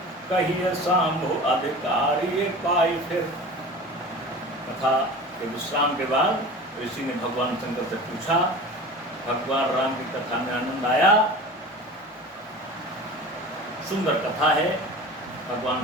कहिए शंभु अधिकारी पाई। फिर कथा के विश्राम के बाद ऋषि ने भगवान शंकर से पूछा, भगवान राम की कथा में आनंद आया, सुंदर कथा है। भगवान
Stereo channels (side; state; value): both; normal; correlation 0.36